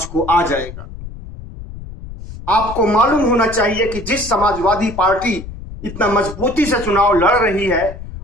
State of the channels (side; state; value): left; noise; rumble, 12 dB below the sound